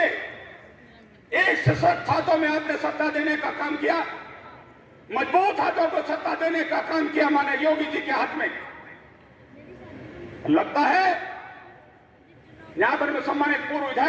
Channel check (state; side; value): identical; both; correlation 1.00